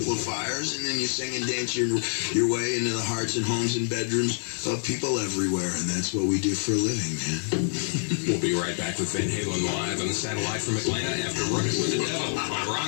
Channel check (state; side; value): silent; right; digital silence